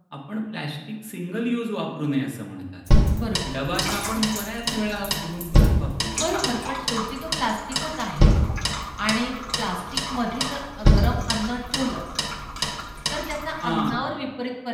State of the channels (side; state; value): both; identical; correlation 1.00